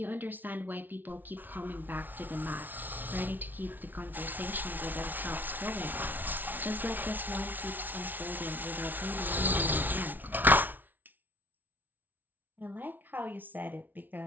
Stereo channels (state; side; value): late; left; 0.086 ms